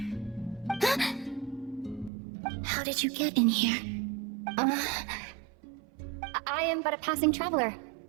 How did you get in here? I am but a passing traveler.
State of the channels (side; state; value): left; drops out; at 2.1 s